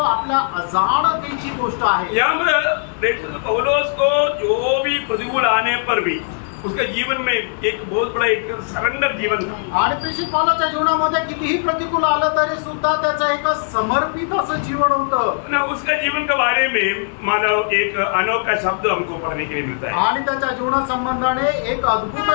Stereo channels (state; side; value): silent; right; 58 dB below the other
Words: आपल्या अजाणतेची गोष्ट आहे. यामध्ये पौलुस को जो भी प्रतिकूल आने पर भी उसका जीवन में एक बहुत बड़ा एक सरेंडर जीवन था. आणि प्रेषित पौलाच्या जीवनामध्ये कितीही प्रतिकूल आलं तरी सुद्धा त्याचं एक समर्पित असं जीवन होतं. उसका जीवन के बारे में मानो एक अनोखा शब्द हमको पढ़ने के लिए मिलता है. आणि त्याच्या जीवना संबंधाने एक अद्भुत